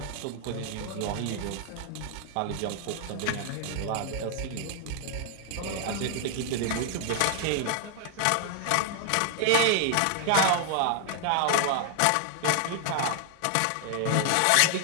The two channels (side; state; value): both; different; correlation 0.00